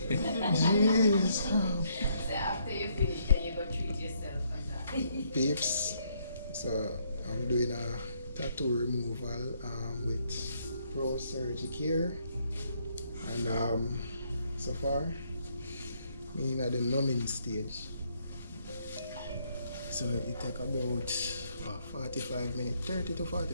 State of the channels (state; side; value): inverted; both; correlation -0.71